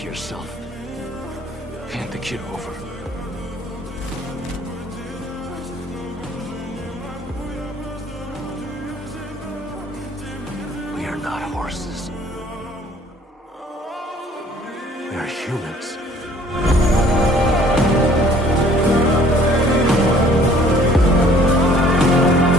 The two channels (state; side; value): normal; both; correlation 0.56